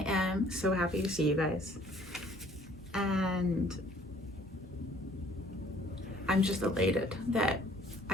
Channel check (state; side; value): normal; both; correlation 0.57